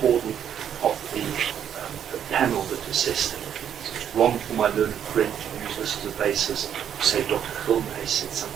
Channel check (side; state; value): left; quieter; 9.1 dB